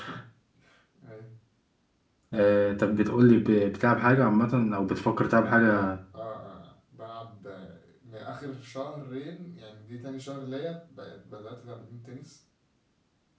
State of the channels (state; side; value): identical; both; correlation 1.00